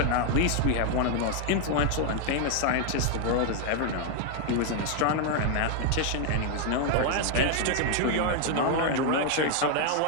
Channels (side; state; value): both; different; correlation 0.01